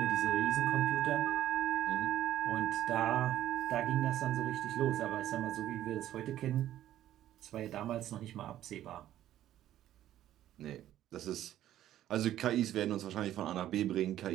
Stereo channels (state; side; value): quieter; left; 12.5 dB